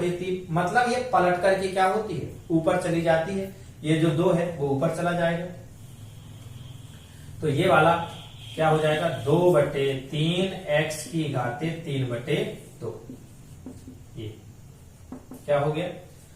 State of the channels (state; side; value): identical; both; correlation 1.00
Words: मतलब ये पलट करके क्या होती है, ऊपर चली जाती है। ये जो 2 है वो ऊपर चला जाएगा, तो ये वाला क्या हो जाएगा 2/3 x की घातें 3/2। ये क्या हो गया,